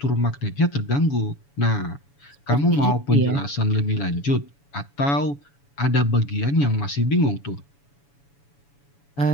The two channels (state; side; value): late; right; 7.1 ms